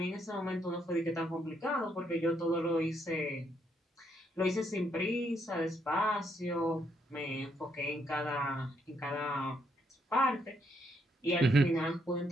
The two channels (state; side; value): normal; both; correlation 0.75